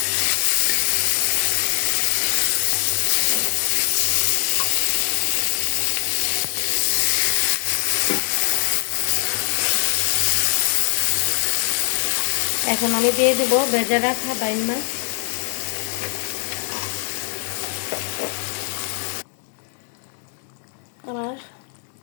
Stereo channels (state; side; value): silent; right; 59 dB below the other